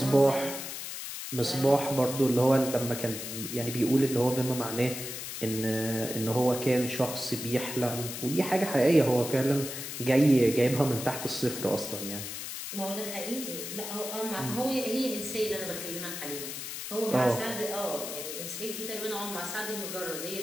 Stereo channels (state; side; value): noise; left; hiss, 7 dB below the sound